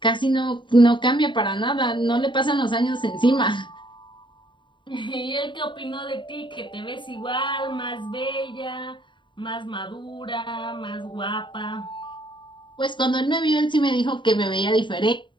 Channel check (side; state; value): right; late; 0.23 ms